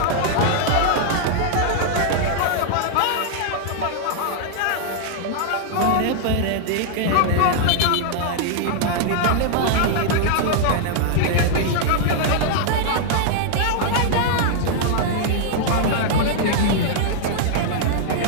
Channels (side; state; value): both; different; correlation -0.01